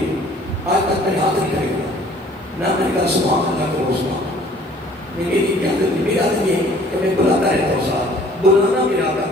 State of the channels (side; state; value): both; normal; correlation 0.54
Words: آج تک میں ہاتھ نہیں کھڑے گا. نہ میں نے کہا سبحان اللہ کرو سبحان. میری عادت میری عادت یہ ہے کہ میں بلاتا رہتا ہوں. صاحب بلانا میرا آقا